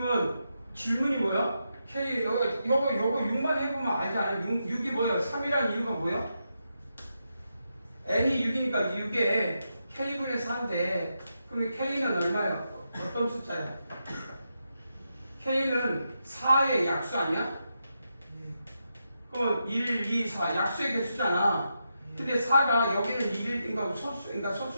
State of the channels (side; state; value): both; inverted; correlation -0.85